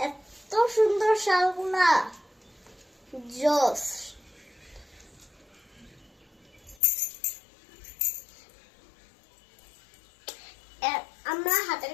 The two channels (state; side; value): drops out; right; at 6.8 s